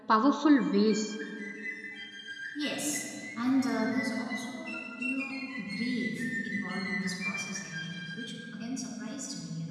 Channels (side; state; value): both; identical; correlation 1.00